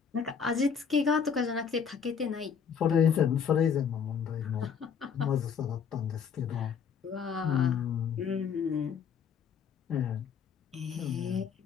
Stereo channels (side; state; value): right; quieter; 6.8 dB